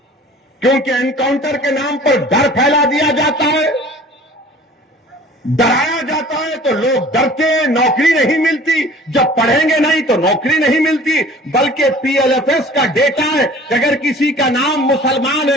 क्योंकि एनकाउंटर के नाम पर डर फैला दिया जाता है, डराया जाता है तो लोग डरते हैं, नौकरी नहीं मिलती, जब पढ़ेंगे नहीं तो नौकरी नहीं मिलती। बल्कि पीएलएफएस का डेटा है कि अगर किसी का नाम मुसलमान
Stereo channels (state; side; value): normal; both; correlation 0.47